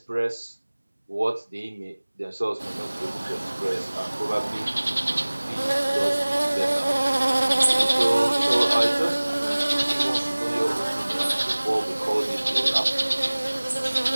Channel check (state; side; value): inverted; both; correlation -1.00